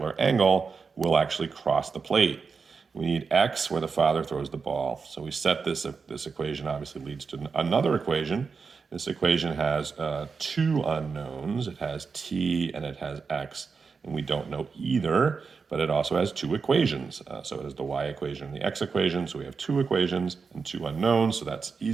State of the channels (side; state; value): left; quieter; 5.1 dB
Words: angle, will actually cross the plate. We need x where the father throws the ball. So we set this equation obviously leads to another equation. This equation has two unknowns. It has t and it has x, and we don't know either, but it also has two equations. So it has the y equation and the x equation. So we have two equations and two unknowns, so that's